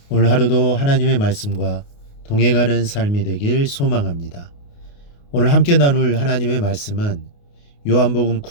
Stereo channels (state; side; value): late; right; 28 ms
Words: 오늘 하루도 하나님의 말씀과 동행하는 삶이 되길 소망합니다. 오늘 함께 나눌 하나님의 말씀은 요한복음